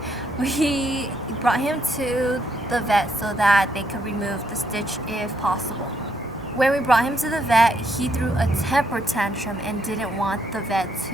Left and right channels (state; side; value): normal; both; correlation 0.74